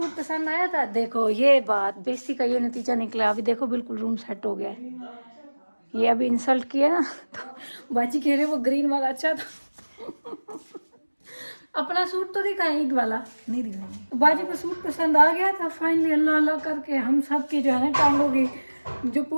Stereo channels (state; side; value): inverted; both; correlation -1.00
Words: पसंद आया था? देखो ये बात बेइज्जती का ये नतीजा निकला। अभी देखो बिल्कुल रूम सेट हो गया है। ये अभी इंसल्ट किया ना, तो बाजी कह रहे वो ग्रीन वाला अच्छा था। अपना सूट तो दिखाएं, ईद वाला नहीं दिखाएंगे। बाजी को सूट पसंद आ गया था फाइनली, अल्लाह अल्लाह करके हम सब की जो है ना टांगों की जो